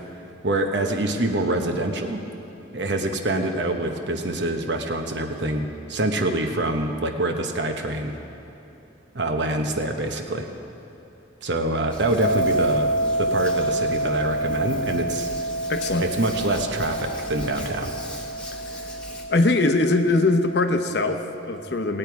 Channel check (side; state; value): both; normal; correlation 0.12